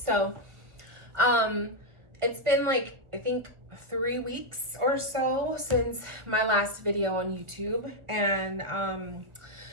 been like, I think 3 weeks or so since my last video on YouTube. And I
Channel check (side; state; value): left; late; 1.4 ms